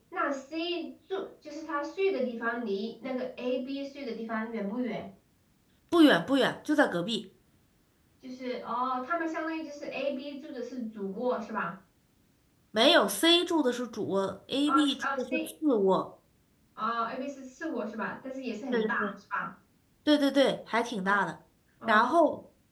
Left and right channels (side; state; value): both; identical; correlation 1.00